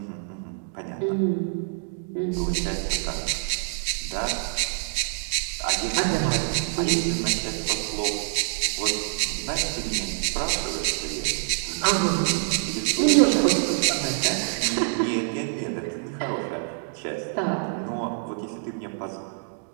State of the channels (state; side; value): silent; left; digital silence